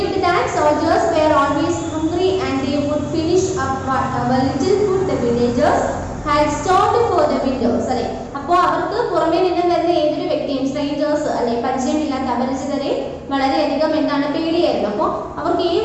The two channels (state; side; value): identical; both; correlation 1.00